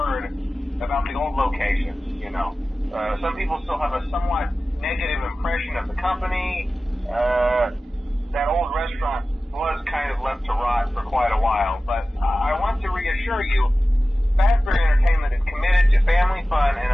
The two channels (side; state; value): both; normal; correlation 0.96